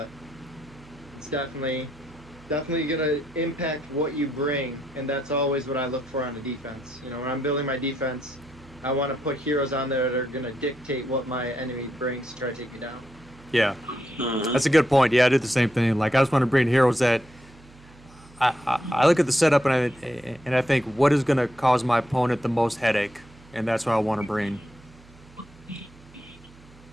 it's definitely gonna impact what you bring, and that's always what I look for on a defense. You know, when I'm building my defense, I want to put heroes on there that are gonna dictate what my enemy brings to try to take me down. Yeah, that's a good point. Yeah, I did the same thing. Like I just want to bring heroes that I look at the setup and I think what is going to cause my opponent the most headache, and that's what I want to bring.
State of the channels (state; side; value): noise; right; hum, 24 dB below the sound